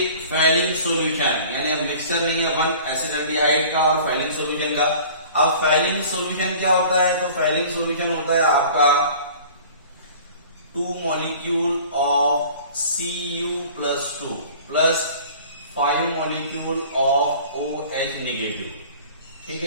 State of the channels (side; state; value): both; inverted; correlation -0.46